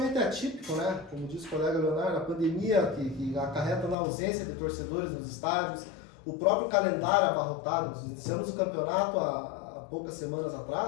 atípico, né? Como disse o colega Leonardo, a pandemia que acarreta na ausência de torcedores nos estádios, o próprio calendário abarrotado. Nós iniciamos o campeonato há poucas semanas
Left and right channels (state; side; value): drops out; right; at 4.0 s